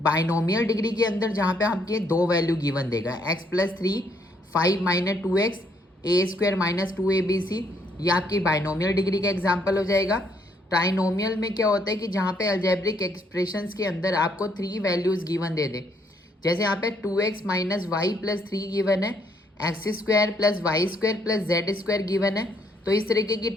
डिग्री के अंदर जहाँ पे आपके दो वैल्यू गिवन देगा, x+3, 5 - 2x, a² - 2abc, ये आपकी बाइनोमियल डिग्री का एग्जाम्पल हो जाएगा। ट्राइनोमियल में क्या होता है कि जहाँ पे अलजेब्रिक एक्सप्रेशंस के अंदर आपको 3 वैल्यूज गिवन दे दे। जैसे यहाँ पे 2x - y + 3 गिवन है, x² + y² + z² गिवन है। तो इस तरीके की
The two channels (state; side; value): normal; both; correlation 0.70